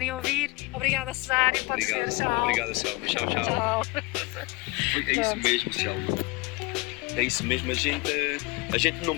a ouvir. Obrigada, Cesário. Pode ser, tchau. Obrigada, Selma. Tchau, tchau. Tchau. É isso mesmo, Selma. É isso mesmo, a gente não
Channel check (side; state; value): right; quieter; 24.4 dB